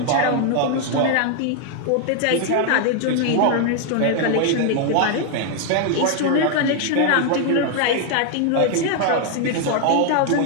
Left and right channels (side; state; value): both; different; correlation 0.00